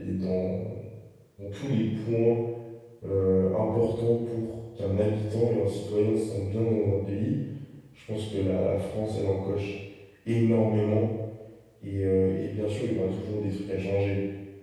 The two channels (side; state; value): both; identical; correlation 1.00